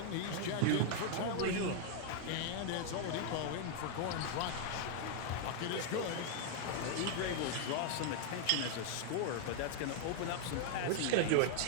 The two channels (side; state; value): both; different; correlation 0.00